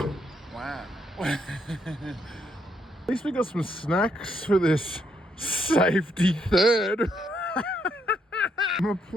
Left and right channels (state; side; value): normal; both; correlation 0.74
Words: Wow. At least we got some snacks for this safety third. I'm a